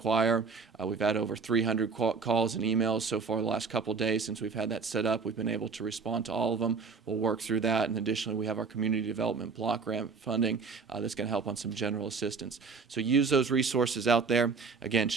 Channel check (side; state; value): left; quieter; 4.9 dB